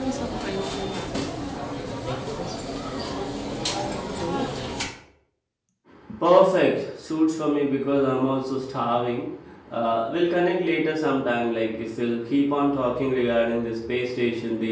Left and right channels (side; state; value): both; identical; correlation 1.00